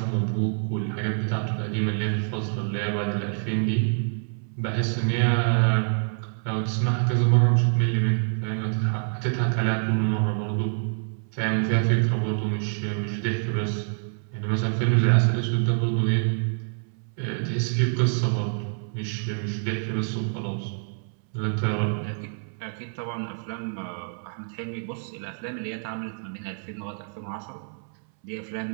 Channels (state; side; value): silent; left; 61 dB below the other